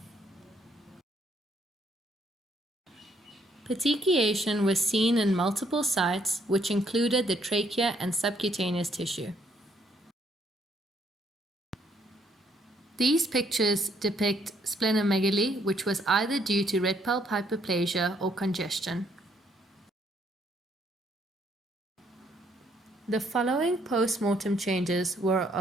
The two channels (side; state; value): both; normal; correlation 0.69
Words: Petechiation was seen in multiple sites, which included the trachea and subcutaneous tissue. These pictures depict splenomegaly, which was either due to red pulp hyperplasia or congestion. The following post-mortem changes were